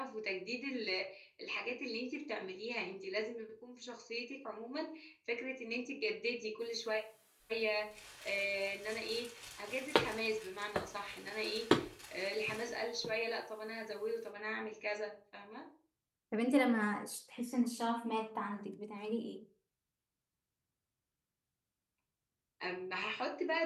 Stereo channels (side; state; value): both; identical; correlation 1.00